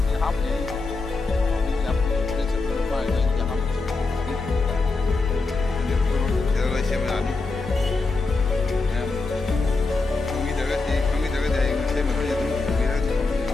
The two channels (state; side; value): quieter; right; 3.6 dB